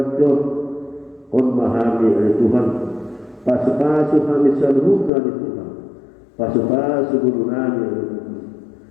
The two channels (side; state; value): right; drops out; at 5.1 s